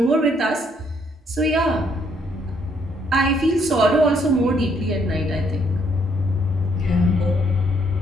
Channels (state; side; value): normal; both; correlation 0.70